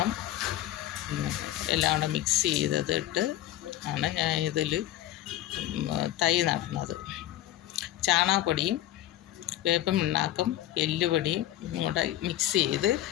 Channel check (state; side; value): quieter; right; 13.8 dB